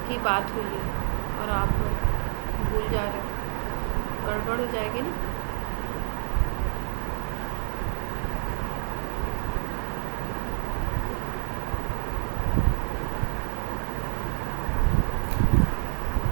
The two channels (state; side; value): silent; left; digital silence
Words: बात हुई है, और आप भूल जा रहे हो, गड़बड़ हो जाएगी ना।